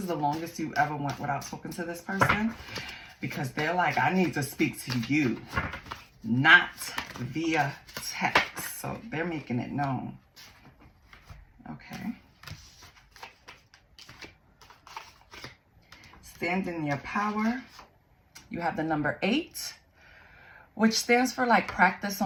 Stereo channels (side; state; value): both; identical; correlation 1.00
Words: the longest you ever went without talking to this person, because they're like, I need to speak to you, not via text. So they're making it known. Okay. Stand in your power. You have the number 8, which stands for like practice